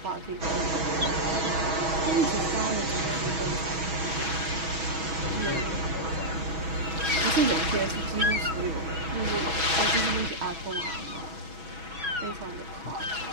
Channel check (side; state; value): left; late; 6.1 ms